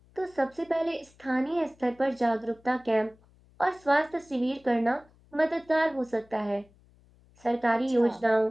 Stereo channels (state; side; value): noise; left; hum, 30 dB below the sound